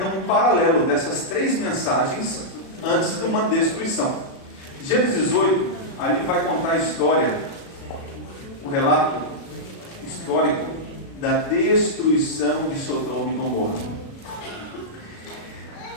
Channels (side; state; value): right; late; 36 ms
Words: um paralelo dessas 3 mensagens antes de uma destruição. Gênesis 18, ali vai contar a história, o relato histórico da destruição de Sodoma e Gomorra.